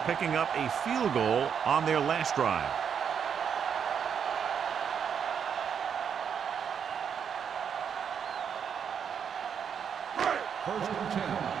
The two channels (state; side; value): quieter; left; 7.5 dB